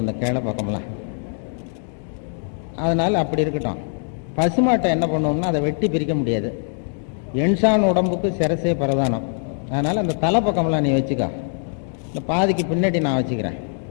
அந்த கிளை பக்கம்லாம். அதனால அப்படி இருக்கட்டும். பசுமாட்டை என்ன பண்ணுவோம்னா, அதை வெட்டி பிரிக்க முடியாது. என்சான் உடம்புக்கு சிரசே பிரதானம். அதனால அந்த தலை பக்கம்லாம் நீ வச்சுக்கோ, இந்த பாதிக்கு பின்னாடி நான் வச்சுக்கிறேன்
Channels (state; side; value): silent; right; digital silence